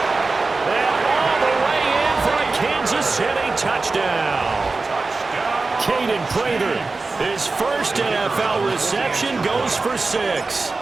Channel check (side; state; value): left; quieter; 3.7 dB